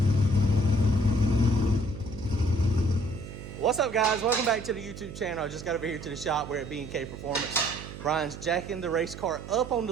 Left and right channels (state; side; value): noise; right; hum, 12 dB below the sound